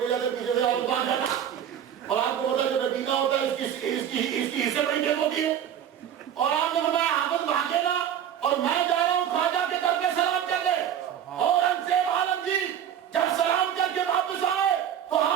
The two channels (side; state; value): left; quieter; 9.6 dB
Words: جاتے پیچھے سے حافظ بھاگ جاتا. اور آپ کو پتا جو نبینا ہوتا ہے اس کی حصے بڑی تیز ہوتی ہے. اور آپ نے فرمایا حافظ بھاگے نہ اور میں جا رہا ہوں خواجہ کے در پہ سلام کر دے. اورنگزیب عالمگیر جب سلام کر کے واپس آئے تو